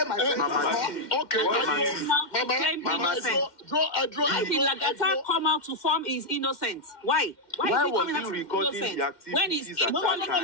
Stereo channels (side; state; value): right; late; 2.1 ms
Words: my friend is. Okay, Why did Lagata come out to form his innocent? Why? Why is he was coming he out to recording innocent the activities when he's at No, that